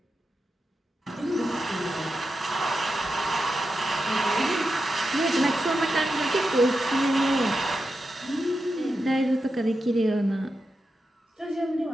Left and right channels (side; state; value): both; normal; correlation 0.89